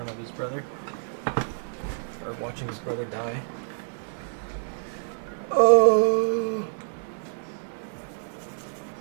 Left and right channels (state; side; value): silent; left; 60 dB below the other